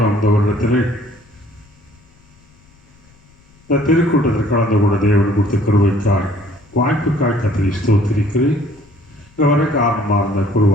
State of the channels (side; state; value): left; noise; rumble, 30 dB below the sound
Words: இந்த வருடத்திலே இந்த திருக்கூட்டத்தில் கலந்து கூட தேவன் கொடுத்த கருவைக்காய் வாய்ப்புக்காய் கத்தரை ஸ்தோத்திரிக்கிறேன். இங்கே வர காரணமாக இருந்த